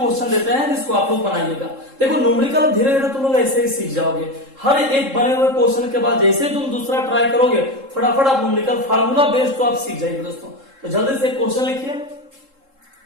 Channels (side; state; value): left; late; 3.7 ms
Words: देते हैं जिसको आप लोग बनाइएगा। देखो न्यूमेरिकल धीरे धीरे तुम लोग ऐसे ही सीख जाओगे। हर एक बने हुए क्वेश्चन के बाद जैसे तुम दूसरा ट्राई करोगे फटाफट आप न्यूमेरिकल फार्मूला बेस्ड तो आप सीख जाएंगे दोस्तों। तो जल्दी से क्वेश्चन लिखिए,